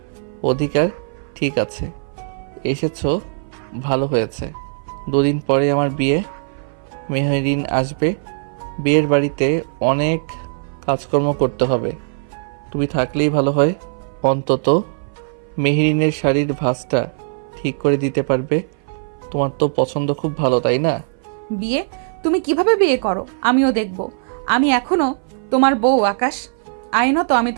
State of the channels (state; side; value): silent; left; 58 dB below the other